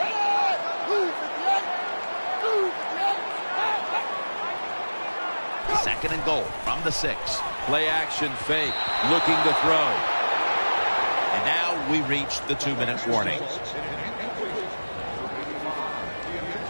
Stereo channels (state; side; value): inverted; both; correlation -1.00